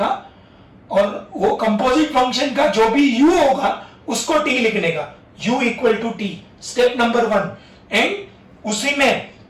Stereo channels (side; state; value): both; identical; correlation 1.00